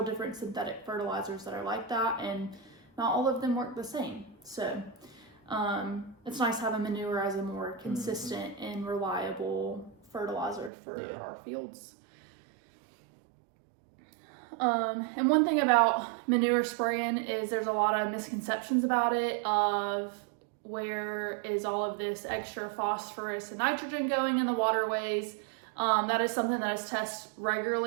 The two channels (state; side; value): drops out; left; at 10.7 s